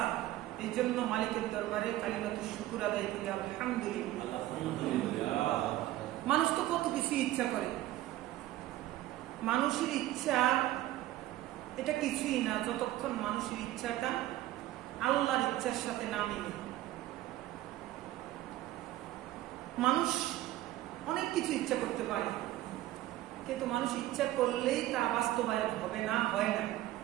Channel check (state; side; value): quieter; left; 15.2 dB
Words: এই জন্য মালিকের দরবারে কালিমাতুশ শুকর আদায় করি আলহামদুলিল্লাহ। মানুষ তো কত কিছু ইচ্ছা করে, মানুষের ইচ্ছা এটা কিছুই না যতক্ষণ মানুষের ইচ্ছাটা আল্লাহর ইচ্ছার সাথে না মিলে। মানুষ অনেক কিছু ইচ্ছা করতে পারে, কিন্তু মানুষ ইচ্ছা করলেই তা বাস্তবায়ন হবে না, হয় না।